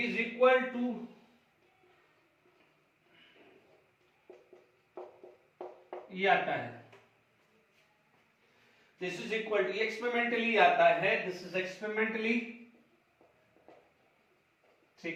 इक्वल टू ये आता है, this is equal to, experimentally आता है, दिस इज एक्सपेरिमेंटली।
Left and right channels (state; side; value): identical; both; correlation 1.00